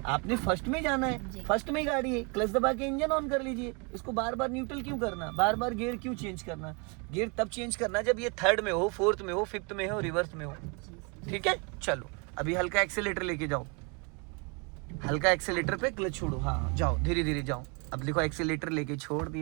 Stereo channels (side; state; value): left; quieter; 31.8 dB